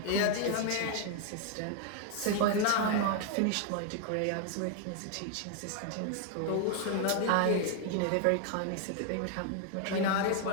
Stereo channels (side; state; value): both; different; correlation 0.00